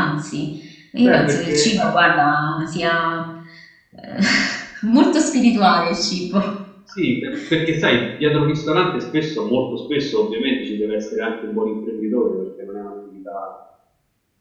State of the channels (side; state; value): both; identical; correlation 1.00